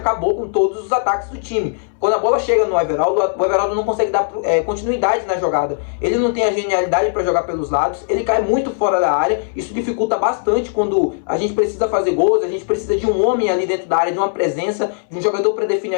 com todos os ataques do time. Quando a bola chega no Everaldo, o Everaldo não consegue dar continuidade na jogada. Ele não tem a genialidade para jogar pelos lados, ele cai muito fora da área, isso dificulta bastante quando a gente precisa fazer gols, a gente precisa de um homem ali dentro da área, de uma presença, de um jogador para definir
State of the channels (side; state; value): right; silent; 64 dB below the other